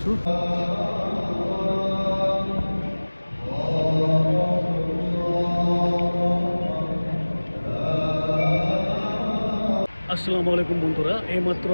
আসসালামু আলাইকুম বন্ধুরা, এইমাত্র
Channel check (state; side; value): inverted; both; correlation -1.00